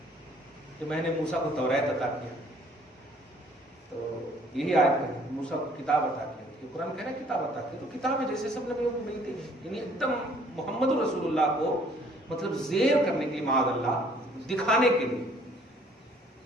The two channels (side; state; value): both; normal; correlation 0.59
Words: کہ میں نے موسیٰ کو توریت عطا کیا. تو یہی آیت ہے، موسیٰ کو کتاب عطا کیا. یہ قرآن کہہ رہا ہے کتاب عطا کی، تو کتاب ہے جیسے سب نبیوں کو ملتی ہے. یعنی ایک دم محمد رسول اللہ کو مطلب زیر کرنے کے لیے، معاذ اللہ، دکھانے کے لیے